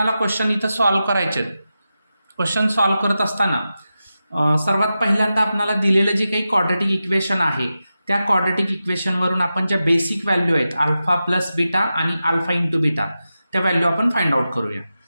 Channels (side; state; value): both; inverted; correlation -0.92